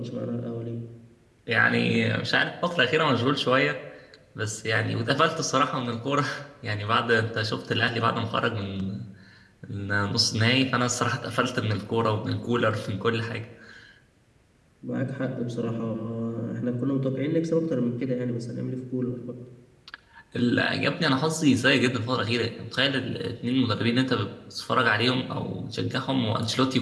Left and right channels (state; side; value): identical; both; correlation 1.00